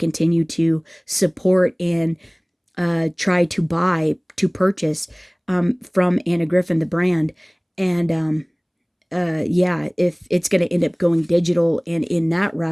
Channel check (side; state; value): both; identical; correlation 1.00